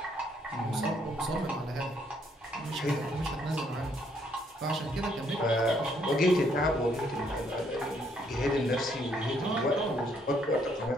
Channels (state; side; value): normal; both; correlation 0.70